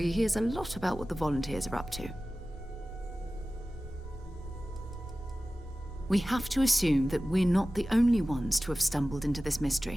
hears a lot about what the volunteers are up to. We have to assume that we're not the only ones to have stumbled into this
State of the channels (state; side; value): normal; both; correlation 0.96